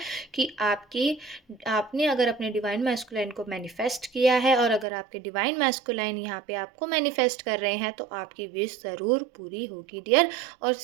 कि आपने अगर अपने डिवाइन मैस्कुलाइन को मैनिफेस्ट किया है और अगर आपके डिवाइन मैस्कुलाइन यहाँ पे आपको मैनिफेस्ट कर रहे हैं तो आपकी विश ज़रूर पूरी होगी डियर। और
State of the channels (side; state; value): left; drops out; at 4.9 s